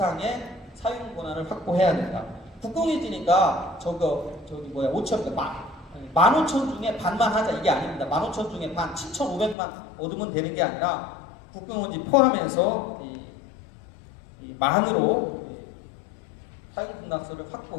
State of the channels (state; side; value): drops out; right; at 9.6 s